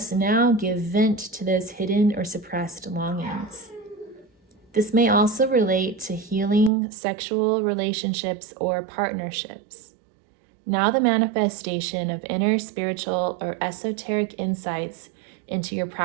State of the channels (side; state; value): left; drops out; at 6.7 s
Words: now give vent to those hidden or suppressed longings. This may also relate to healing sexual relationships or partnerships. Now the manifestation of inner spiritual or esoteric insights into your